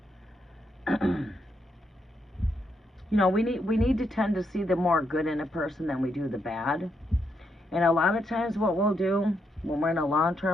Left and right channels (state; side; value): normal; both; correlation 0.79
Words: You know, we need to tend to see the more good in a person than we do the bad. And a lot of times what we'll do when we're in a